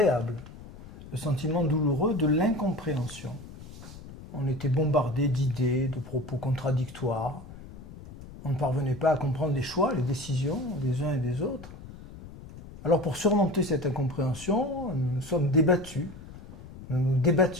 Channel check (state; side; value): noise; left; rumble, 16 dB below the sound